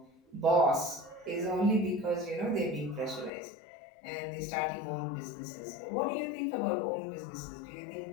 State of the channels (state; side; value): drops out; right; at 3.3 s